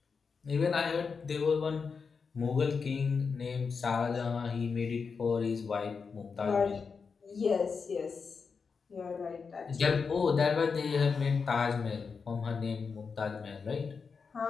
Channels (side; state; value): right; quieter; 5.4 dB